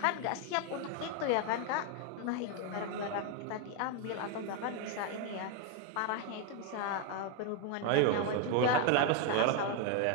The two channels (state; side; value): different; both; correlation 0.01